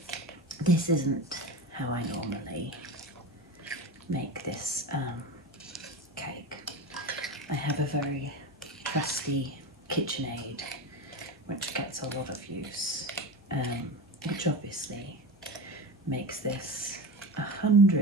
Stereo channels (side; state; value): both; normal; correlation 0.26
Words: this isn't how I normally make this cake. I have a very trusty KitchenAid which gets a lot of use, which obviously makes this